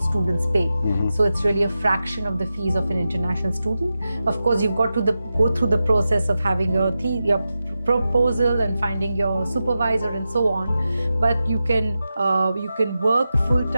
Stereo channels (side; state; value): both; inverted; correlation -0.91